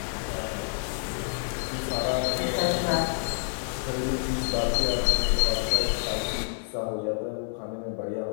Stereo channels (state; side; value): silent; right; 59 dB below the other